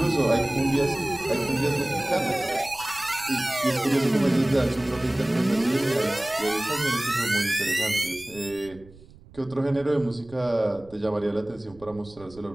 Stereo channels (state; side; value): noise; right; rumble, 23 dB below the sound